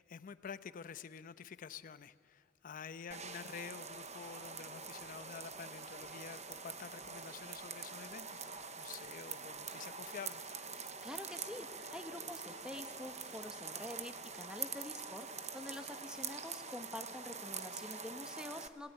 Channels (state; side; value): normal; both; correlation 0.13